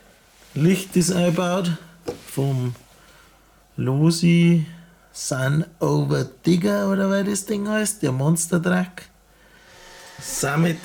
Licht ist eingebaut vom Losi Sun Over Digger oder wie das Ding heißt, der Monster Truck.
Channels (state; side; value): identical; both; correlation 1.00